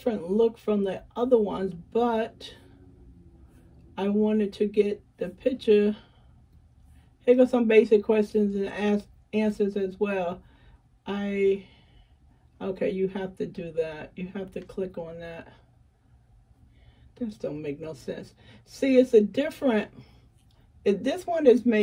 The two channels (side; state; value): both; identical; correlation 1.00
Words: look from the other ones, but I wanted to get the picture. Here go some basic questions and answers as well. Okay, you have to do that. You have to click on that. This don't make no sense. See, it's a different, this one is